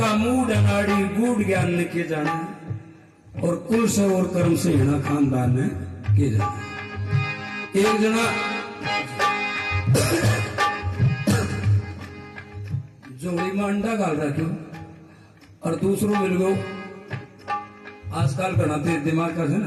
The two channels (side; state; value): both; identical; correlation 1.00